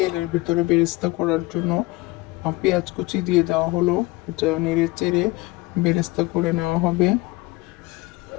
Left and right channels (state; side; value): quieter; right; 21.6 dB